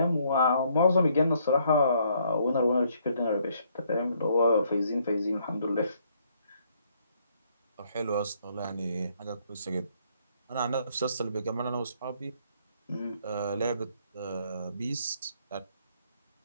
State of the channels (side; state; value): both; inverted; correlation -0.68